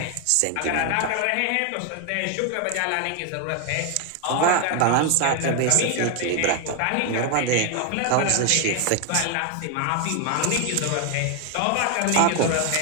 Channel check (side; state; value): both; different; correlation 0.01